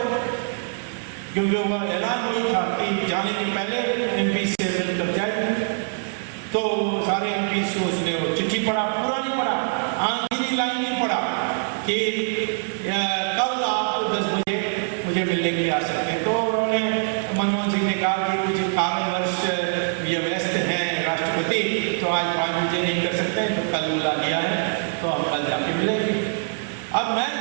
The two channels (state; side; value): silent; left; digital silence